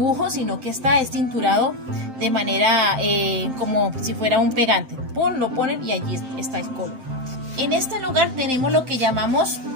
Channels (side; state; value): left; late; 7.7 ms